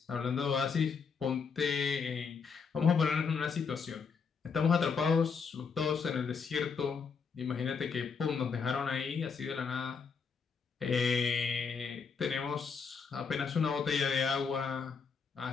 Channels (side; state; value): right; quieter; 5.7 dB